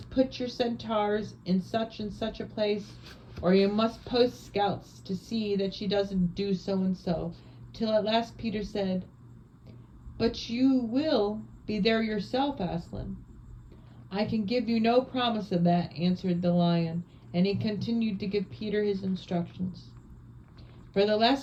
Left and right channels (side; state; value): both; identical; correlation 1.00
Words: put your centaurs in such and such a place, or you must post scouts to see that she doesn't do so and so, till at last Peter said, but you will be there yourself, Aslan. I can give you no promise of that, answered the lion, and he continued to give Peter his instructions. For the